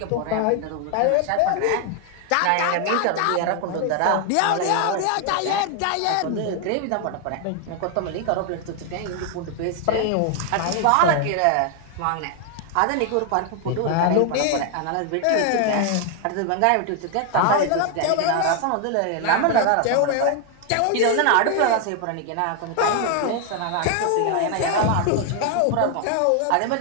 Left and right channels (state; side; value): different; both; correlation 0.00